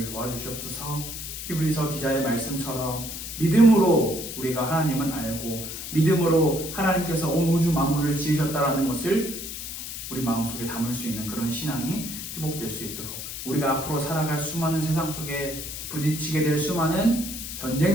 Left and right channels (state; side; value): noise; left; hiss, 8 dB below the sound